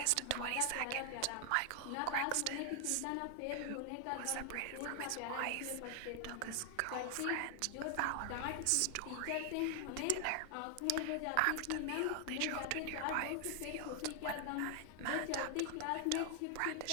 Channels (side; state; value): both; different; correlation 0.00